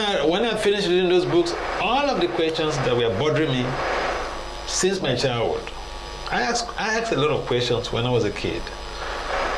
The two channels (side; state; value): both; identical; correlation 1.00